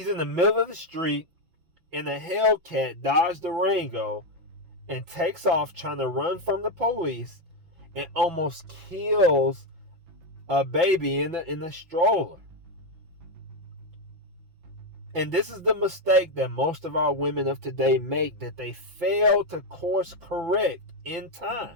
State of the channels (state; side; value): late; left; 6.0 ms